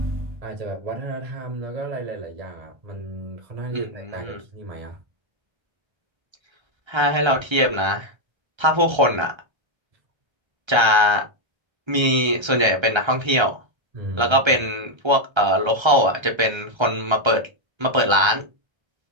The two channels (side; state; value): left; late; 1.3 ms